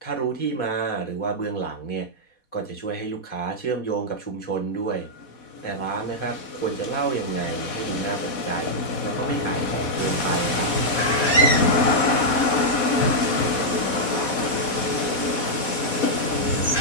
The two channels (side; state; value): right; late; 4.1 ms